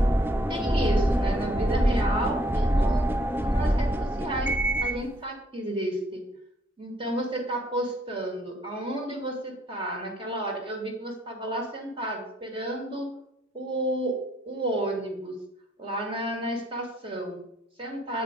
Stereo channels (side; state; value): both; normal; correlation 0.66